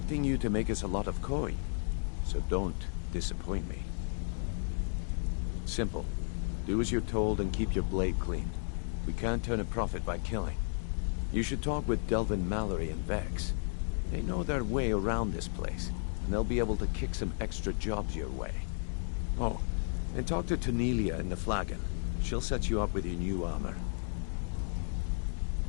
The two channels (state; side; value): silent; right; 55 dB below the other